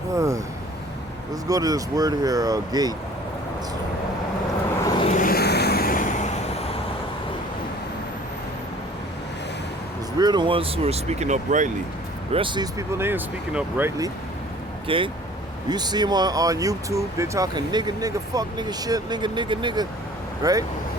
Let's go to this word here, gate. Because we're the ones who are speaking uprightly. The rest of these people, they ain't speaking uprightly. Okay? You see them on YouTube, they're talking nigga, fuck, nigga, shit, nigga, right?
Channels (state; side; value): normal; both; correlation 0.50